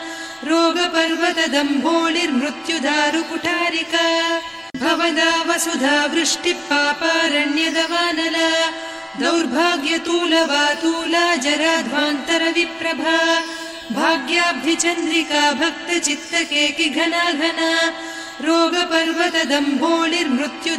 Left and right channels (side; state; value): both; identical; correlation 1.00